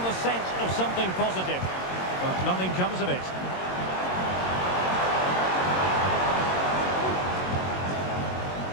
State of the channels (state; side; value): late; right; 22 ms